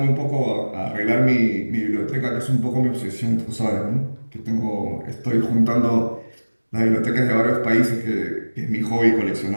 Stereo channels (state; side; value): inverted; both; correlation -1.00